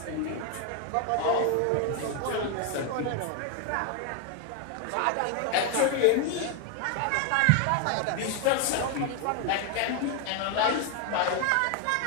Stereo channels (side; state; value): both; different; correlation 0.01